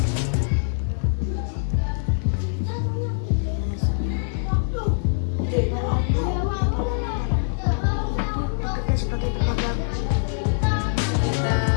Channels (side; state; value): right; silent; digital silence